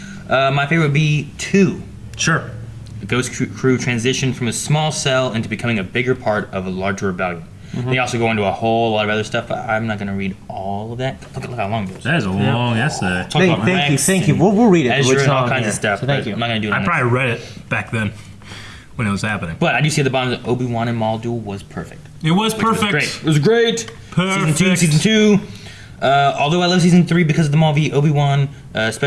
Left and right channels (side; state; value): both; identical; correlation 1.00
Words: my favorite would be 2. Sure. The Ghost Crew transitioned from a small cell into becoming a bigger part of a larger rebellion. They also go into a whole lot of other stuff, but I'm not going to read all of that. Look how long it is. That is a long essay. Talk about Rex Thank you. and We'll read it. Ezra It's and all on kinds here. of stuff. So thank but you. I'm not going to do it. I on probably read it back then when it was happening. But I do see at the bottom that Obi-Wan and Maul duel was perfect. It was Which was perfect. great. It was great. Perfect. Season 2. Although I love season 3 because of the Maul v Obi-Wan,